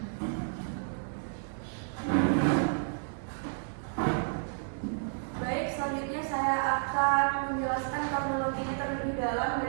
Baik, selanjutnya saya akan menjelaskan kronologinya terlebih dalam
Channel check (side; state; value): left; silent; digital silence